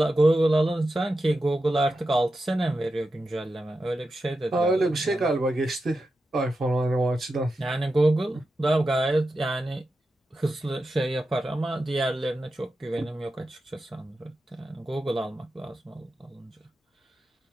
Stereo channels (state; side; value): normal; both; correlation 0.90